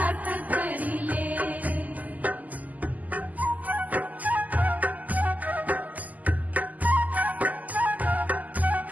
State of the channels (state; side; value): late; left; 0.079 ms